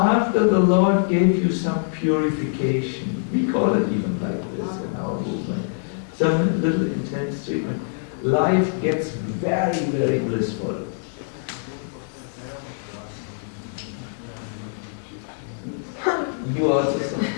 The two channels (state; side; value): silent; right; 58 dB below the other